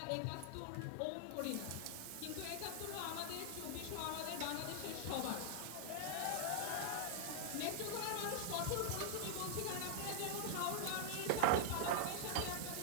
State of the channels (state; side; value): different; both; correlation -0.01